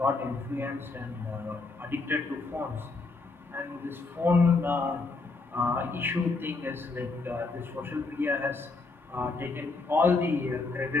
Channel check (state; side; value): quieter; right; 3.8 dB